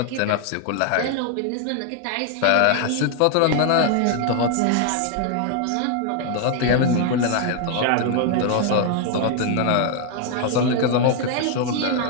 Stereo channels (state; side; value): different; both; correlation 0.00